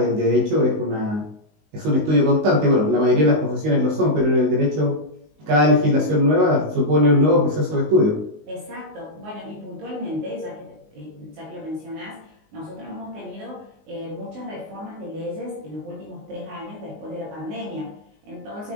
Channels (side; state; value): left; late; 19 ms